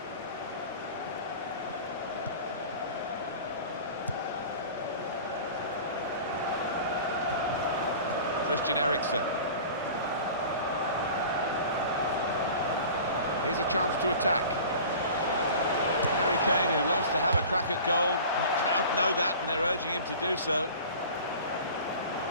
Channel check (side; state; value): both; inverted; correlation -0.40